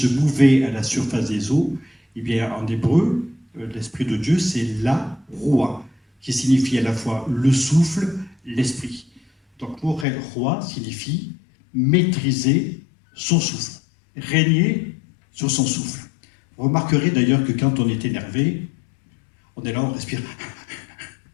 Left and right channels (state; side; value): drops out; right; at 10.1 s